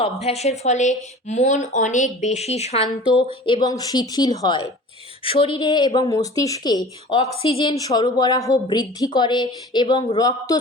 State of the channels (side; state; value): both; normal; correlation 0.41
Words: অভ্যাসের ফলে মন অনেক বেশি শান্ত এবং শিথিল হয়। শরীরে এবং মস্তিষ্কে অক্সিজেন সরবরাহ বৃদ্ধি করে এবং রক্ত